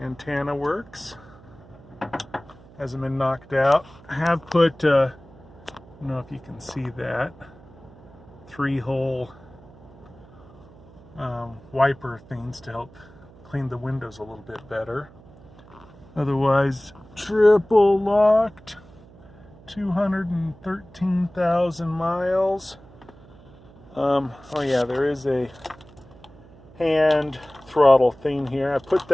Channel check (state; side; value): noise; right; hum, 23 dB below the sound